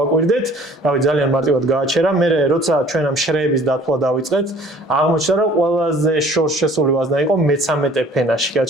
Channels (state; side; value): normal; both; correlation 0.52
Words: რავი ძალიან მარტივად გააჩერა. მე როცა ჩვენ ამ შრეების დათვლა დავიწყეთ, აღმოჩნდა რომ ყველაზე შორს შესული ვაზნა იყო მე-13 ფენაში